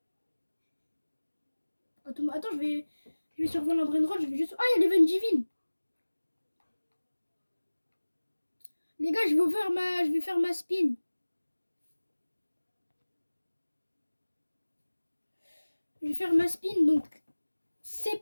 Attends, je vais sur Volant Brain Roll, je vais juste... Ah, il y a l'Event Divine. Les gars, je vais faire ma spin. Je vais faire ma spin, donc c'est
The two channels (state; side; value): inverted; both; correlation -1.00